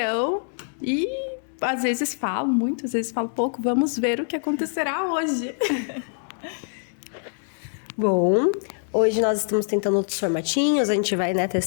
e às vezes falo muito, às vezes falo pouco. Vamos ver o que acontecerá hoje. Bom, hoje nós estamos tentando outros formatinhos, a gente vai,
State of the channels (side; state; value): right; silent; digital silence